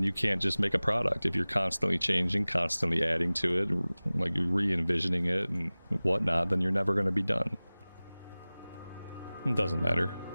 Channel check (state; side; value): inverted; both; correlation -0.99